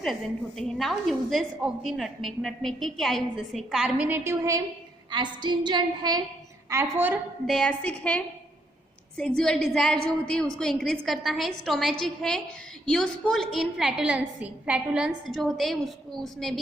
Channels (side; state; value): both; normal; correlation 0.74